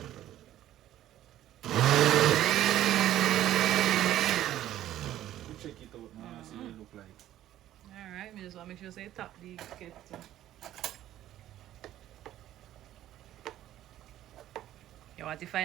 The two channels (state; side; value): quieter; left; 13.0 dB